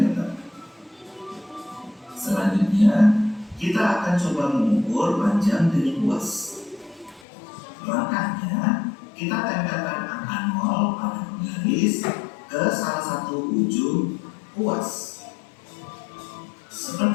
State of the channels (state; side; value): drops out; right; at 7.2 s